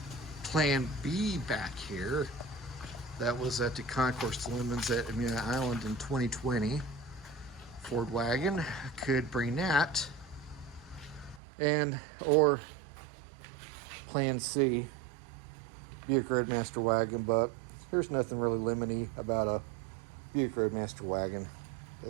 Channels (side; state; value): left; drops out; at 11.4 s